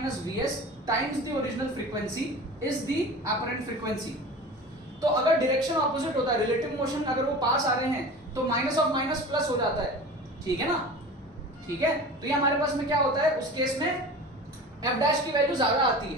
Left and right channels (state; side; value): normal; both; correlation 0.36